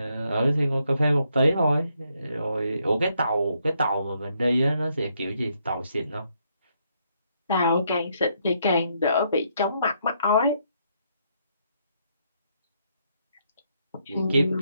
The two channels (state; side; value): inverted; both; correlation -0.75